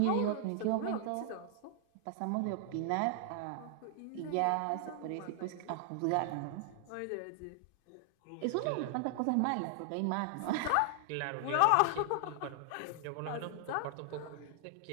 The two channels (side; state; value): both; different; correlation 0.00